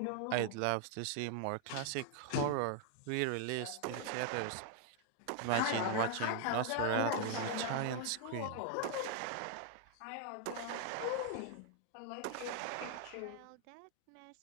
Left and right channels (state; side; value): different; both; correlation 0.00